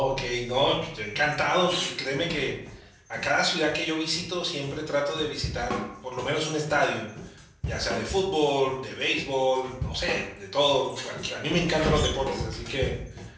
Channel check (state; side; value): identical; both; correlation 1.00